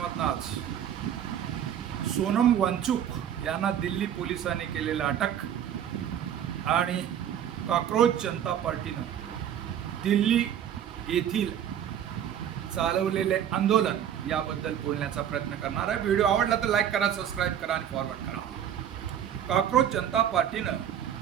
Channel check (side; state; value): left; quieter; 9.7 dB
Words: आज सोनम वांचूक यांना दिल्ली पोलिसांनी केलेला अटक आणि कॉकरोच जनता पार्टीनं दिल्ली येथील चालवलेले आंदोलन याबद्दल बोलण्याचा प्रयत्न करणार आहे। व्हिडिओ आवडला तर लाईक करा, सबस्क्राईब करा आणि फॉरवर्ड करा। कॉकरोच जनता पार्टीनं